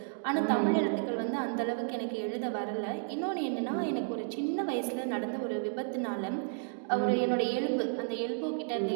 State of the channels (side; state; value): left; silent; digital silence